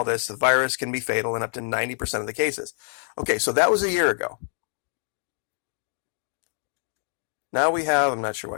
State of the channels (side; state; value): right; silent; digital silence